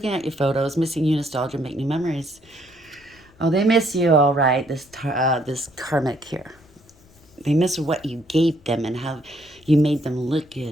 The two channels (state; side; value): noise; left; rumble, 29 dB below the sound